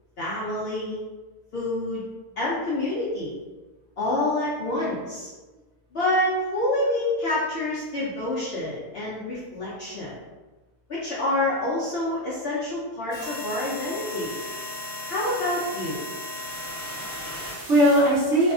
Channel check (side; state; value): both; normal; correlation 0.12